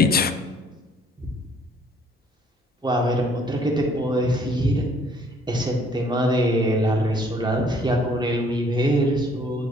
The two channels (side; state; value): both; normal; correlation 0.61